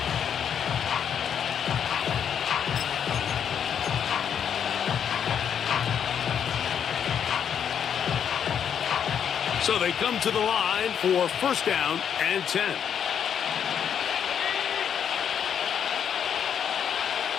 So they come to the line for 1st down and 10.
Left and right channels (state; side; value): quieter; right; 8.2 dB